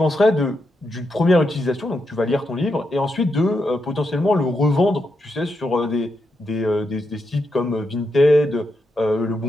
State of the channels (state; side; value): normal; both; correlation 0.84